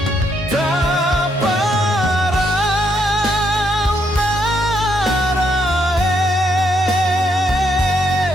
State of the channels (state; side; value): normal; both; correlation 0.75